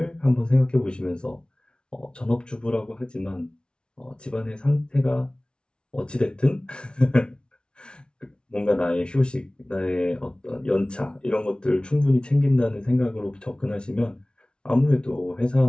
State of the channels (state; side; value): late; right; 0.056 ms